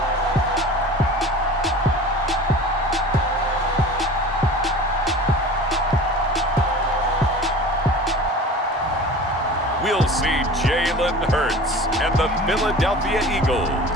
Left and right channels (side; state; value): both; normal; correlation 0.39